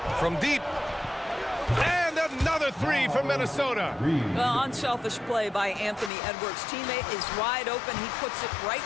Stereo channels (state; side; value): drops out; right; at 6.1 s